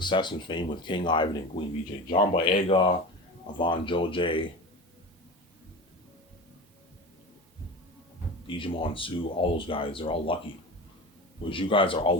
and fame with King Ivan and Queen VJ. John Boyega, Avon Joj, Digimon Sue, all those guys, they're all lucky. Whereas you guys are all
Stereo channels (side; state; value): both; normal; correlation 0.30